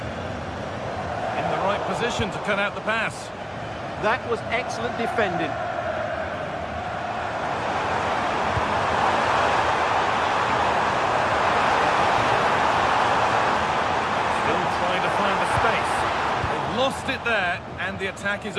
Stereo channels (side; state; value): both; identical; correlation 1.00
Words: In the right position to cut out the pass. That was excellent defending. Still trying to find the space. They've lost it there, and the attack is